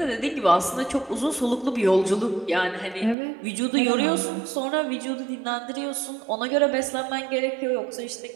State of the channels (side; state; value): left; drops out; at 3.2 s